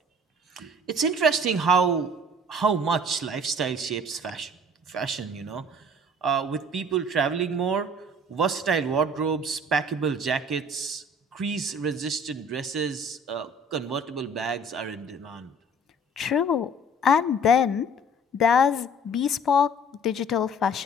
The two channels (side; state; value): both; normal; correlation 0.51